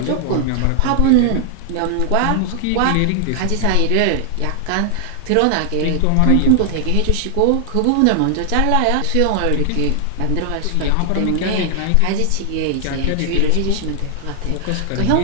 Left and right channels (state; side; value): different; both; correlation 0.00